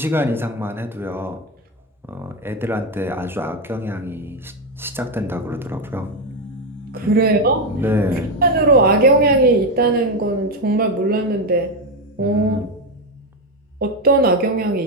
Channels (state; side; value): normal; both; correlation 0.09